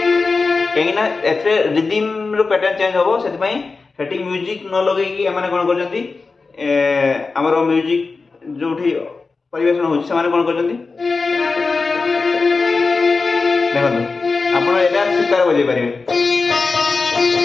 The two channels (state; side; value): quieter; right; 4.2 dB